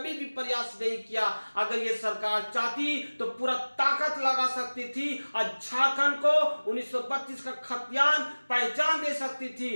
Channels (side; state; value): both; inverted; correlation -1.00